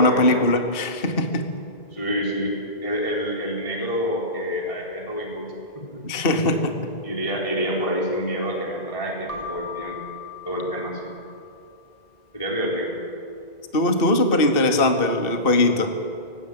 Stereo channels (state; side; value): late; right; 2.6 ms